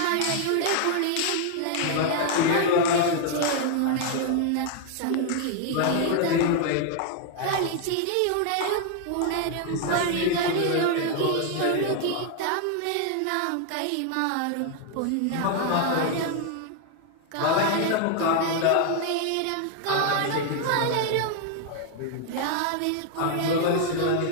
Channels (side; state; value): both; different; correlation 0.00